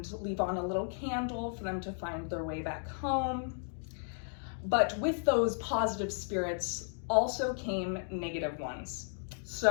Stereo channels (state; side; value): silent; right; 55 dB below the other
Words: leave on a little candle for them to find their way back home. But with those positive spirits also came negative ones.